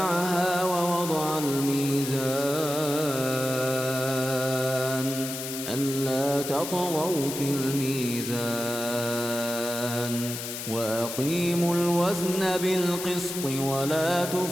ووضع الميزان ألا تطغوا في الميزان وأقيموا الوزن بالقسط ولا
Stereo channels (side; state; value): left; noise; hiss, 7 dB below the sound